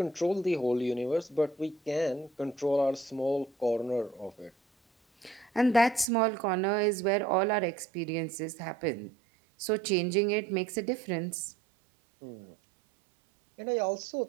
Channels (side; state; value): left; drops out; at 6.1 s